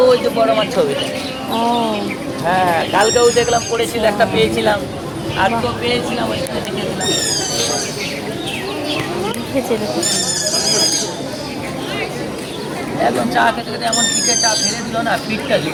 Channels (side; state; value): both; identical; correlation 1.00